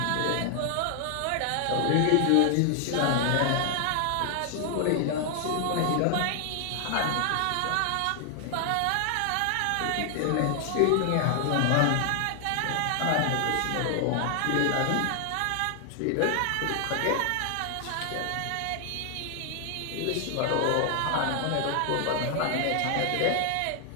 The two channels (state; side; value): different; both; correlation 0.00